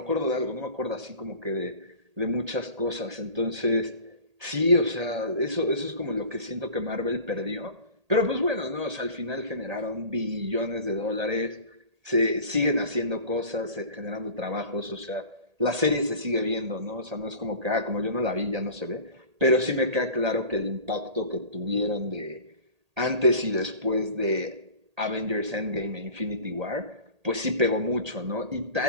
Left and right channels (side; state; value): left; late; 1.8 ms